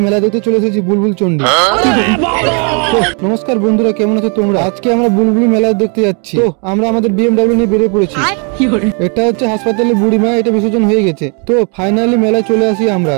মেলা দেখতে চলে এসেছি বুলবুল চন্ডী। নমস্কার বন্ধুরা, কেমন আছো তোমরা? আজকে আমরা বুলবুলি মেলা দেখতে যাচ্ছি। তো আমরা আমাদের বিএমডব্লিউ নিয়ে বেরিয়ে পড়েছি। এটা হচ্ছে হাসপাতালে বুড়িমা, এটা বিসর্জন হয়ে গেছে। তো ফাইনালি মেলায় চলে আসি আমরা।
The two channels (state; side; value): quieter; left; 36.6 dB